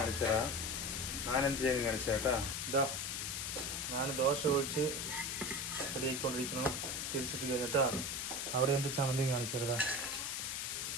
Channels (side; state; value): left; noise; hiss, 2 dB below the sound